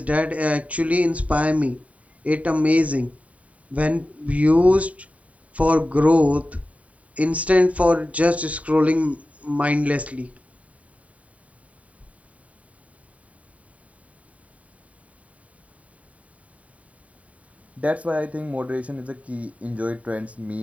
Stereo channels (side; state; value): left; late; 0.068 ms